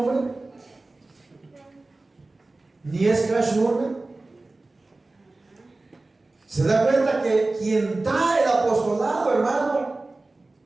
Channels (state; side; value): quieter; left; 3.1 dB